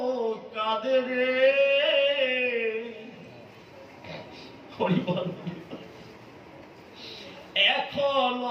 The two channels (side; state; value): both; identical; correlation 1.00